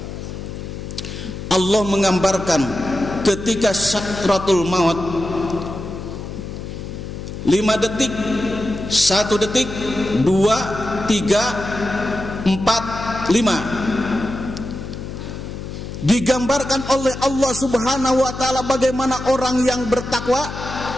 Allah menggambarkan ketika sakratul maut, 5 detik, 1 detik, 2, 3, 4, 5, digambarkan oleh Allah subhanahu wa ta'ala bagaimana orang yang bertakwa,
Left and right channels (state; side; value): noise; left; hum, 9 dB below the sound